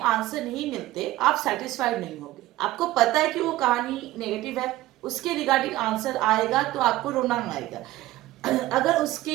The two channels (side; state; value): left; quieter; 16.2 dB